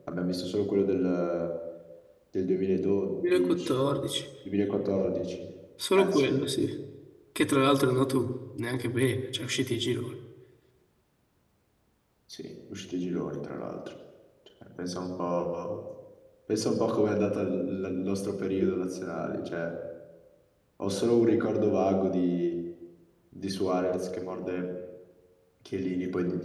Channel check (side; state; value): both; identical; correlation 1.00